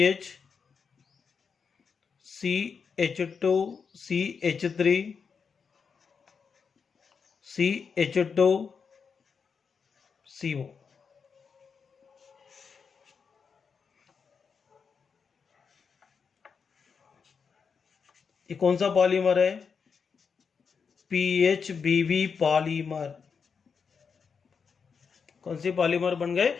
CH2 CH3 CH2 CO। ये कौन सा पॉलीमर है, PHBV पॉलीमर। कौन सी पॉलीमर बन गए,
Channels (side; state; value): right; quieter; 5.9 dB